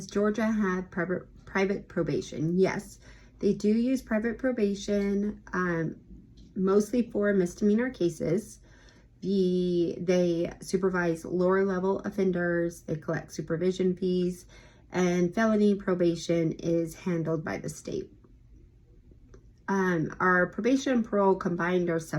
Georgia have private probation? Yes, they do use private probation, mostly for misdemeanor cases. They supervise lower level offenders, they collect supervision fees, and felony probation is handled by the state. Our probation and parole combined are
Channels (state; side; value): identical; both; correlation 1.00